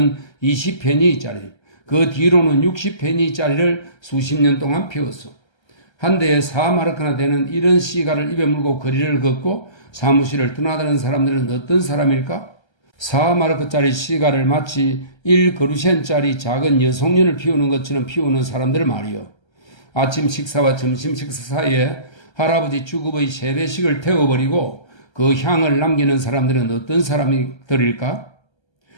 20페니짜리, 그 뒤로는 60페니짜리를 수십 년 동안 피웠어. 한 대에 4마르크나 되는 이런 시가를 입에 물고 거리를 걷고 사무실을 떠나다는 사람들은 어떤 사람일까? 4마르크짜리 시가를 마치 1그루센짜리 작은 여송년을 피우는 것처럼 피우는 사람들 말이요. 아침 식사와 점심 식사 사이에 할아버지 주급의 세배식을 태워버리고 그 향을 남기는 사람들은 어떤 사람들일까?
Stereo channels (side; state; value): right; late; 1.3 ms